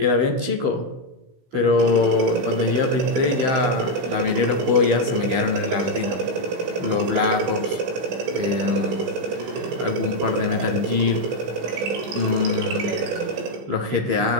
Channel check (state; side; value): late; left; 16 ms